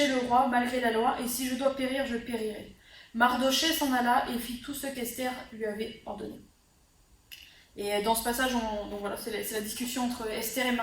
le roi malgré la loi, et si je dois périr, je périrai. » Mardoché s'en alla et fit tout ce qu'Esther lui avait ordonné. Et dans ce passage, donc voilà, c'est la discussion entre Esther et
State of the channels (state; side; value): identical; both; correlation 1.00